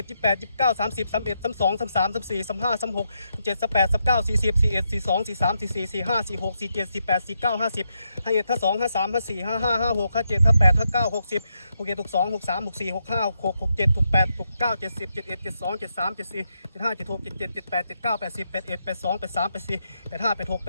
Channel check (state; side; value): inverted; both; correlation -0.81